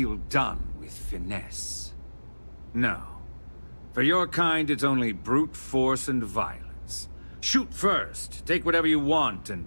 done with finesse. No. For your kind, it's only brute force and violence. Shoot first, take whatever you want, and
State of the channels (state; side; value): inverted; both; correlation -1.00